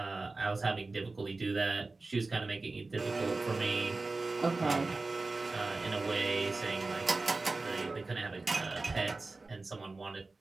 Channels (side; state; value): left; quieter; 3.5 dB